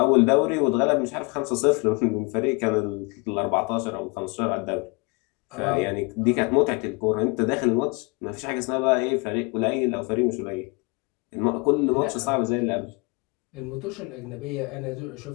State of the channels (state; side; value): quieter; right; 29.6 dB